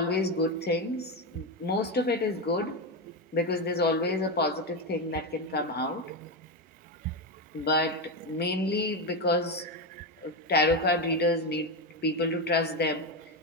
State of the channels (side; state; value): both; normal; correlation 0.12